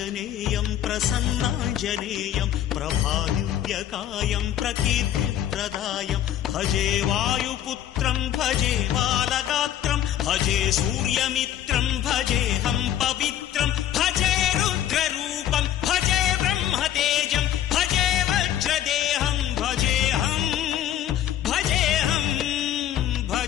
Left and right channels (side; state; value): right; quieter; 11.4 dB